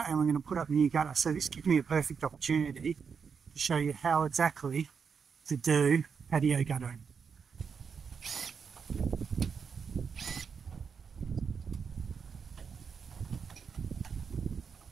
and we're going to put up a new gutter. So this gives me a perfect opportunity to show you how exactly to do patio guttering.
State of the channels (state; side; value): quieter; left; 6.1 dB